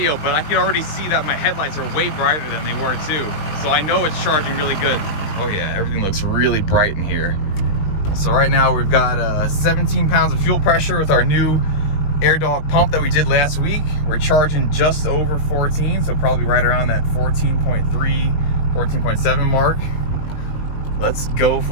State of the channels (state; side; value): late; right; 20 ms